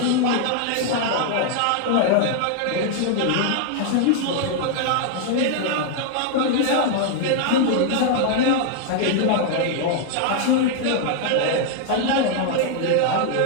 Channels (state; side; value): different; both; correlation 0.00